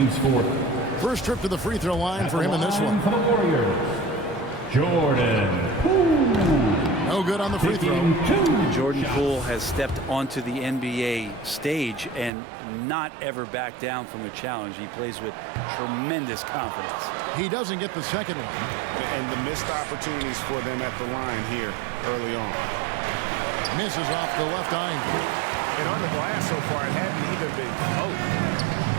fourth. First trip to the free throw line for him in this one. For the Warriors, Jordan Poole. No good on the free throw. Jordan Poole has stepped onto the NBA stage and not ever backed down from a challenge. He plays with tremendous confidence. He doesn't get the second one. And the missed opportunities for them at the line here early on. Misses off the left iron. And on the glass so far, it hadn't even been close.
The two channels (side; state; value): left; drops out; at 12.3 s